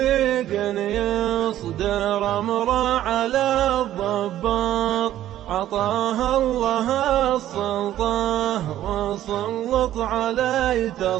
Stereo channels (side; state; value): left; quieter; 12.8 dB